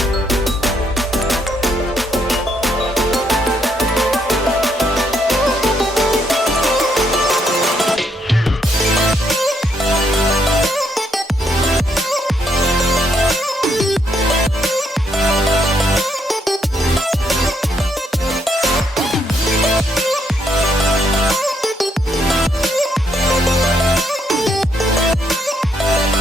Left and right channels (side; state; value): both; normal; correlation 0.74